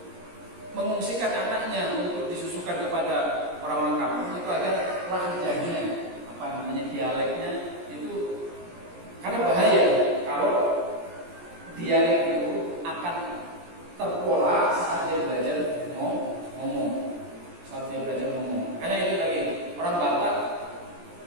mengungsikan anaknya untuk disusukan kepada orang-orang kampung itu agar lahjahnya, dialeknya itu, karena bahaya kalau dialek itu akan terpola saat dia belajar ngomong. Karena itu lagi orang Batak,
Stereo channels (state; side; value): late; left; 17 ms